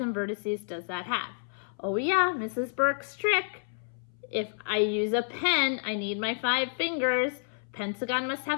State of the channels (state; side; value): silent; right; 57 dB below the other